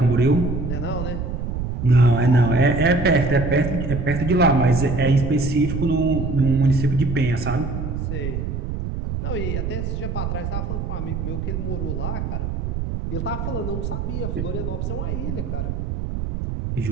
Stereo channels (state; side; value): noise; right; rumble, 3 dB below the sound